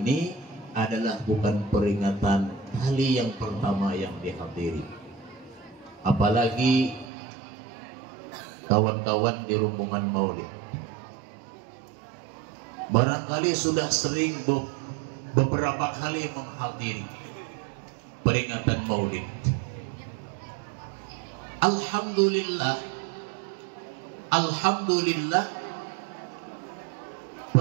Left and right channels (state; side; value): drops out; left; at 7.1 s